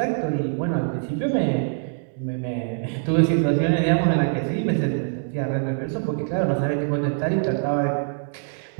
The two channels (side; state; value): left; silent; digital silence